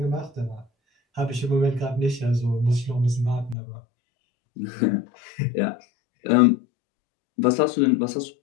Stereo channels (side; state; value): right; drops out; at 3.6 s